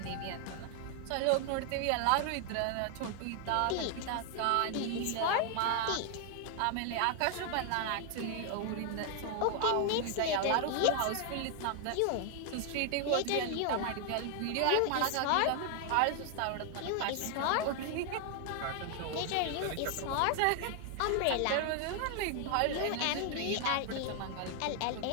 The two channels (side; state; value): both; different; correlation 0.00